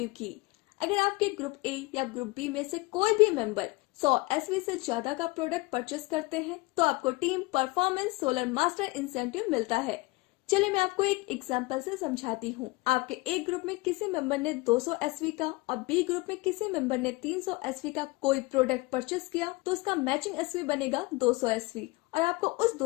की। अगर आपके ग्रुप ए या ग्रुप बी में से कोई भी मेंबर 100 एसवी से ज्यादा का प्रोडक्ट परचेस करते हैं तो आपको team performance solar master incentive मिलता है। चलिए मैं आपको एक एग्जांपल से समझाती हूँ। आपके ए ग्रुप में किसी मेंबर ने 200 एसवी का और बी ग्रुप में किसी मेंबर ने 300 एसवी का कोई प्रोडक्ट परचेस किया तो उसका मैचिंग एसवी बनेगा 200 एसवी और आपको उस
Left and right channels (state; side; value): quieter; right; 23.2 dB